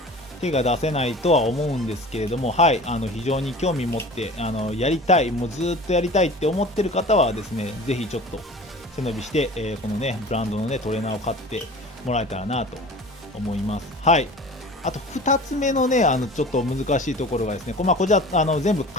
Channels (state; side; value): normal; both; correlation 0.40